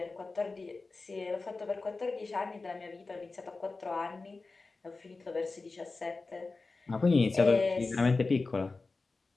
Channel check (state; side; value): quieter; right; 3.8 dB